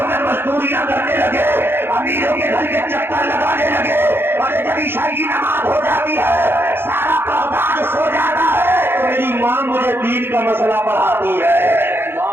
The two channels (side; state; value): left; late; 0.11 ms